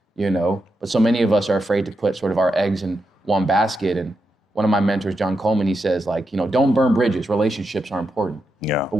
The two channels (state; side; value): normal; both; correlation 0.86